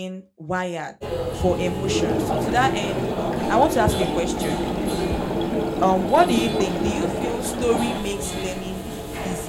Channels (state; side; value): identical; both; correlation 1.00